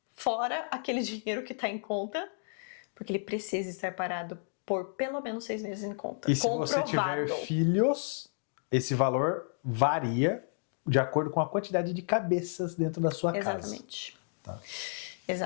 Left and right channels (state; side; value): silent; right; digital silence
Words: fora aquele dinheiro que está em conta, porque ele precisa estar parado por pelo menos 6 meses em conta. E se você tiver filhos, esse valor varia de acordo com a quantidade de cabeças dentro da sua casa. Exatamente. Tá.